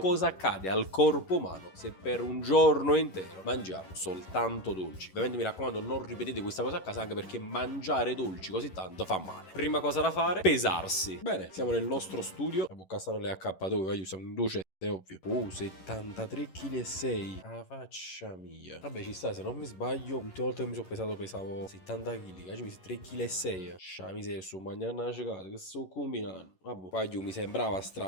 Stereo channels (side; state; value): right; late; 11 ms